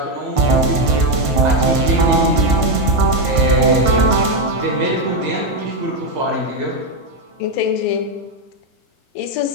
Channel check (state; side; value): late; left; 1.5 ms